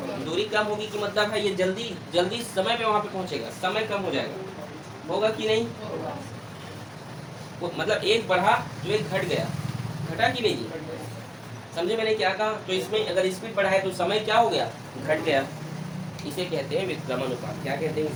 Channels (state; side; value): identical; both; correlation 1.00